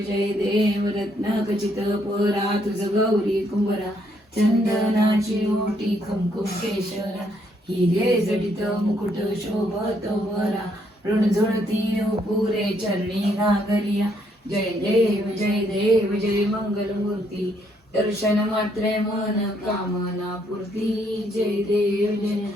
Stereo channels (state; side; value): normal; both; correlation 0.71